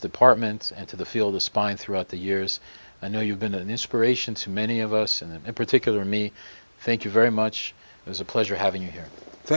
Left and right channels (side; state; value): both; inverted; correlation -1.00